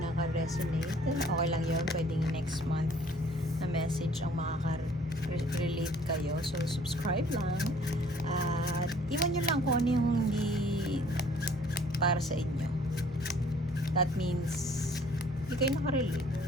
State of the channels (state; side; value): normal; both; correlation 0.57